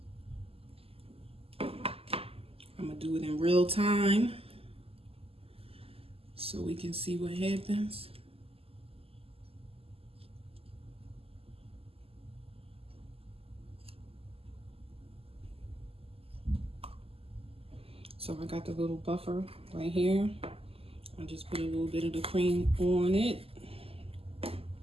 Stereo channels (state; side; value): late; left; 0.28 ms